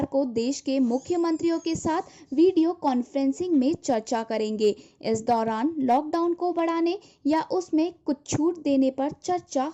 को देश के मुख्यमंत्रियों के साथ वीडियो कॉन्फ्रेंसिंग में चर्चा करेंगे। इस दौरान लॉकडाउन को बढ़ाने या उसमें कुछ छूट देने पर चर्चा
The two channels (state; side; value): identical; both; correlation 1.00